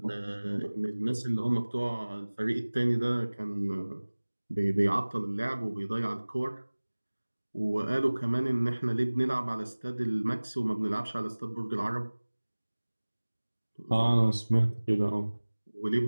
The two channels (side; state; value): both; inverted; correlation -1.00